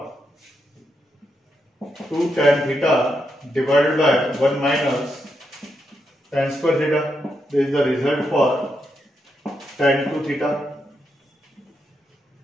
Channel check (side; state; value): both; normal; correlation 0.82